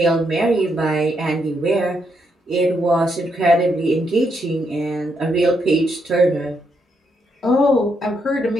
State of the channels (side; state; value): both; normal; correlation 0.78